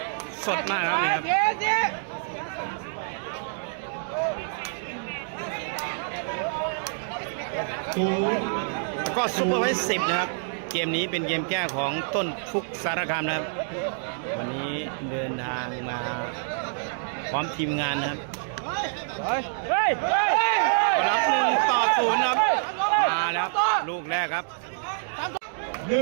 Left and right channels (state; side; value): silent; left; digital silence